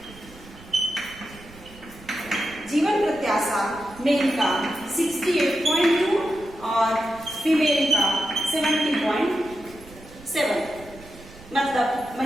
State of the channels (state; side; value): noise; right; rumble, 20 dB below the sound